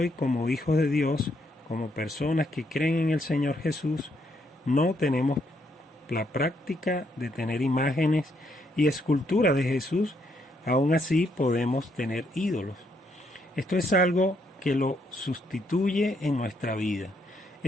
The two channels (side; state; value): both; normal; correlation 0.74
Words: como hijos de Dios, como personas que creen en el Señor Jesús, no tenemos la práctica de tener imágenes y esculturas de Jesús. Aún así podemos tener ídolos. Esto es algo que lo sustituye en nuestra vida.